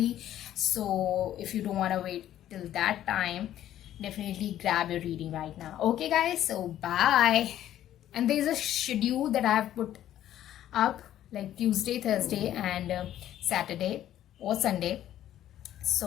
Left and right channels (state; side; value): quieter; right; 12.1 dB